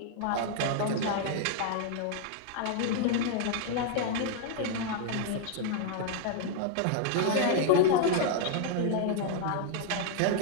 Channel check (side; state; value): both; different; correlation 0.00